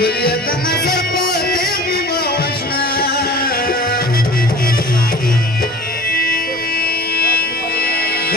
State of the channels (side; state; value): both; normal; correlation 0.42